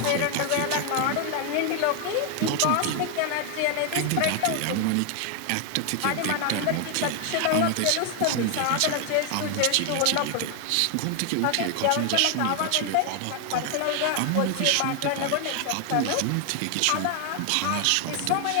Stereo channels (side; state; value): both; different; correlation 0.00